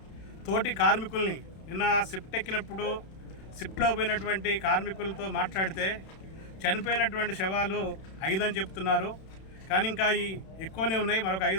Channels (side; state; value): right; late; 31 ms